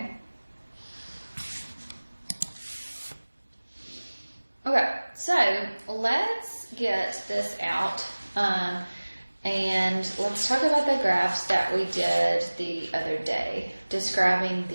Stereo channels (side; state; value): both; inverted; correlation -1.00